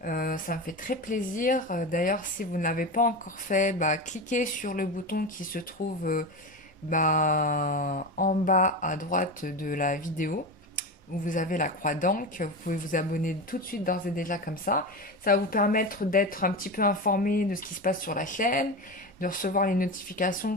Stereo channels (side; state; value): both; normal; correlation 0.22